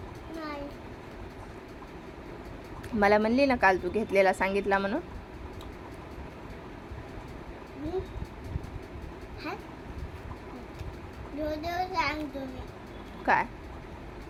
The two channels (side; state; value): both; identical; correlation 1.00